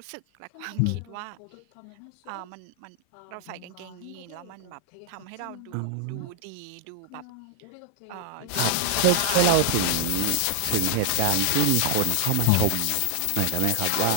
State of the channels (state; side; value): different; both; correlation 0.00